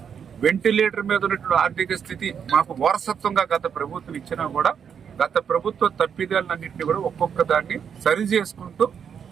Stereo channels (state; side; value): quieter; left; 7.5 dB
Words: వెంటిలేటర్ మీద ఉన్నటువంటి ఆర్థిక స్థితి మాకు వారసత్వంగా గత ప్రభుత్వం ఇచ్చినా కూడా గత ప్రభుత్వ తప్పిదాలన్నింటినీ కూడా ఒక్కొక్క దాన్ని సరి చేసుకుంటూ